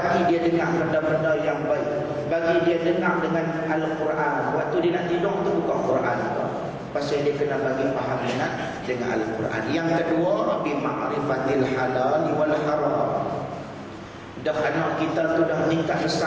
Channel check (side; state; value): both; identical; correlation 1.00